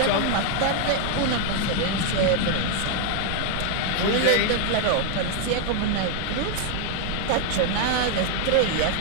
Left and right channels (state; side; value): different; both; correlation 0.00